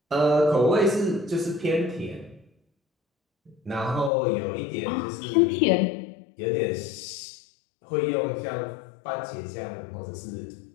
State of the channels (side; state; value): right; drops out; at 4.1 s